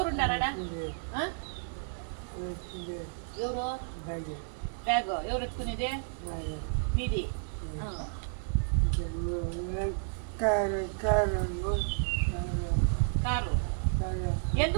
ఎవరు బ్యాగ్ ఎవరు ఎత్తుకునేది? మీది కారు.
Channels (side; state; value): left; silent; 57 dB below the other